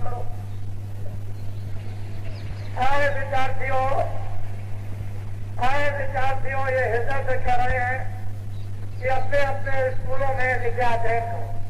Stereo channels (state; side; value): identical; both; correlation 1.00